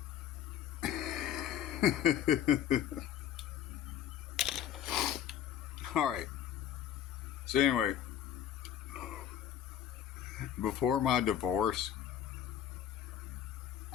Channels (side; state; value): right; quieter; 10.1 dB